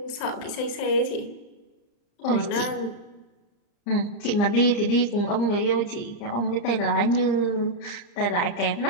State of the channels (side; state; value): right; late; 35 ms